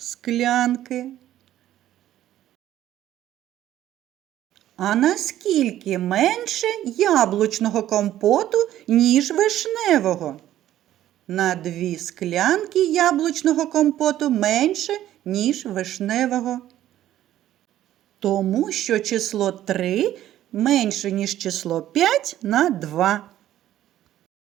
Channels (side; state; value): left; quieter; 12.8 dB